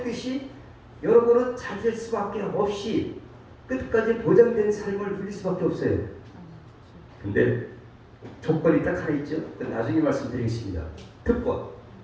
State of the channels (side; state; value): both; identical; correlation 1.00